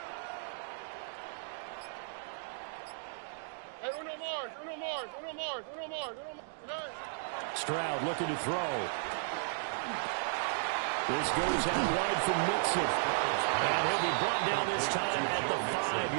Stroud looking to throw. This goes out wide from Mixon. And he'll be brought down this time at the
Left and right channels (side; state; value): left; silent; digital silence